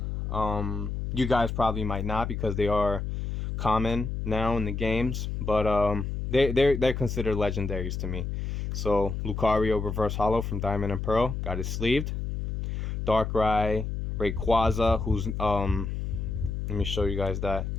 You guys probably might not because they are common now in the games, but they're considered legendaries to me. So Lucario reverse holo from Diamond and Pearl, got it sleeved. Darkrai, Rayquaza, who's let me show you guys that.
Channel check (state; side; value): noise; left; hum, 3 dB below the sound